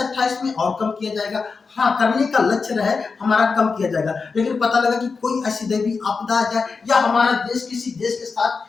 में और कम किया जाएगा। हाँ, करने का लक्ष्य रहे हमारा कम किया जाएगा, लेकिन पता लगा कि कोई ऐसी दैवीय आपदा आ जाए या हमारा देश किसी देश के साथ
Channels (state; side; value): quieter; right; 4.8 dB